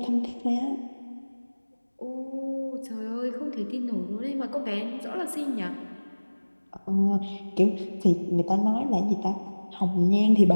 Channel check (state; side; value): inverted; both; correlation -1.00